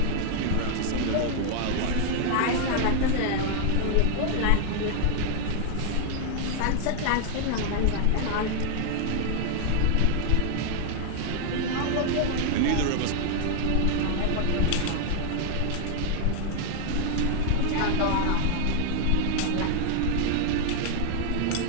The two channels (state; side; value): different; both; correlation 0.00